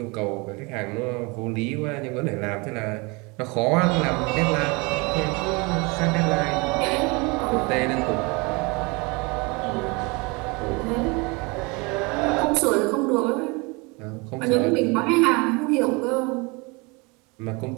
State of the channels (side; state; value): left; quieter; 27.8 dB